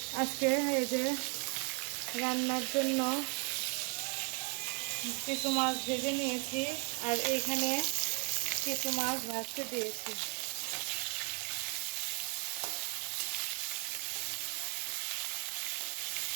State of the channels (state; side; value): quieter; left; 34.2 dB